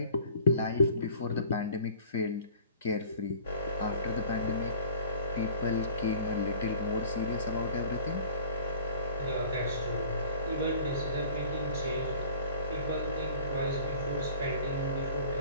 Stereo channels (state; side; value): inverted; both; correlation -0.48